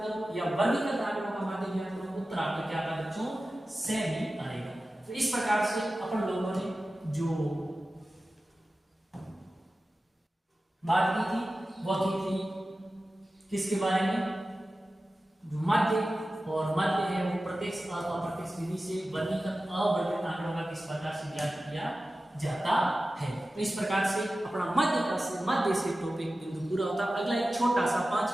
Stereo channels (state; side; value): normal; both; correlation 0.95